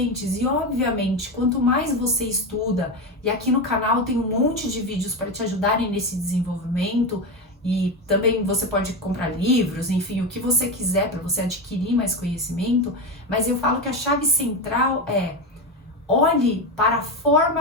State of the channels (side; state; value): both; normal; correlation 0.16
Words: E obviamente, quanto mais você estuda, e aqui no canal tem um monte de vídeos para te ajudarem nesse desenvolvimento, e também você pode comprar livros, enfim, o que você quiser para você adquirir mais conhecimento, mas eu falo que a chave central é: olhe para a